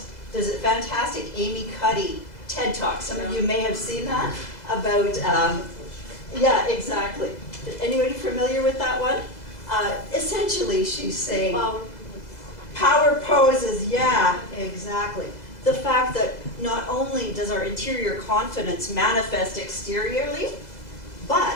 there's a fantastic Amy Cuddy TED Talk. Some of you may have seen that about, yeah, exactly. Anybody familiar with that one? Essentially, she's saying power poses, yeah, exactly. The fact that not only does our interior confidence manifest exteriorly,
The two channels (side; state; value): right; late; 2.0 ms